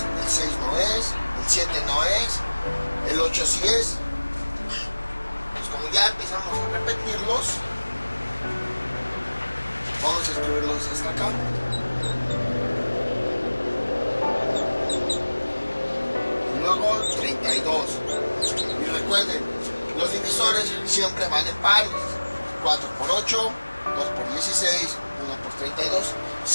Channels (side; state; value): both; inverted; correlation -1.00